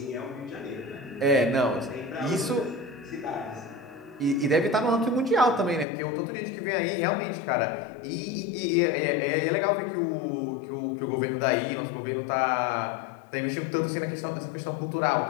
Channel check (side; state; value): right; drops out; at 5.9 s